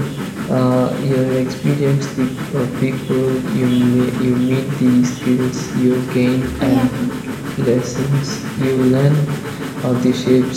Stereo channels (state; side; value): identical; both; correlation 1.00